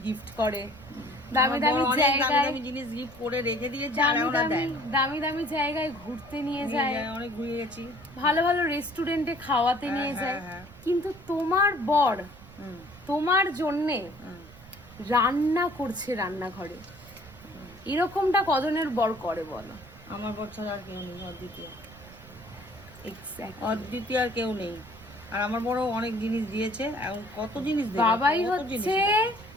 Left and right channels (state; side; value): noise; right; rumble, 20 dB below the sound